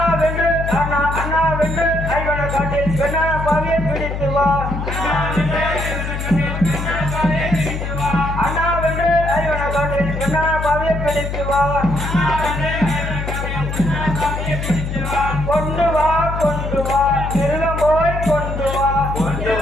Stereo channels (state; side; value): noise; left; hum, 4 dB below the sound